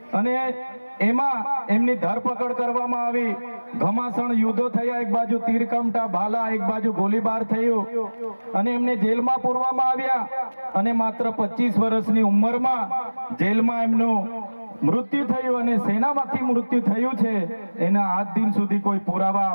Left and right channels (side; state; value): both; inverted; correlation -1.00